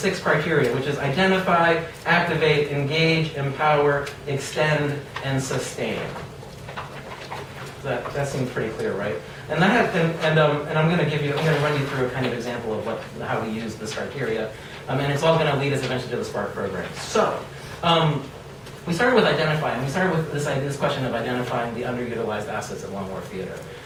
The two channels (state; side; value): identical; both; correlation 1.00